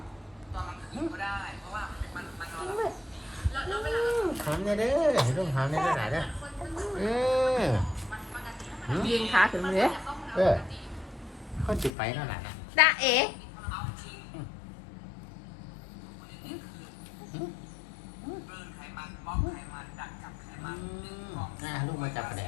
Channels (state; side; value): drops out; right; at 11.9 s